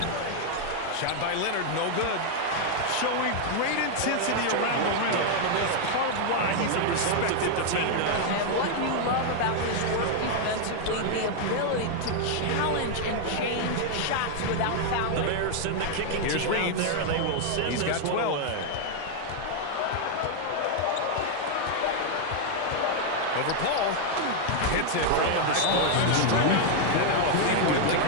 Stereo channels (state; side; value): different; both; correlation 0.00